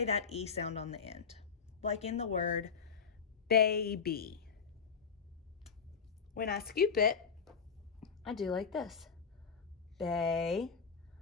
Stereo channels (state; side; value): quieter; right; 6.1 dB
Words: that E sound on the end. Like in the word baby. When I scoop it, I do like this. Baby.